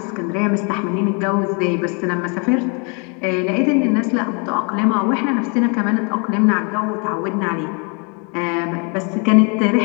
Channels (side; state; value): right; quieter; 35.0 dB